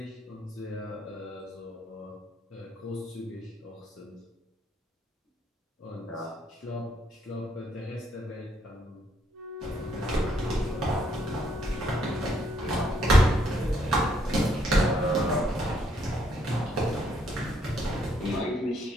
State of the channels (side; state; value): both; normal; correlation 0.71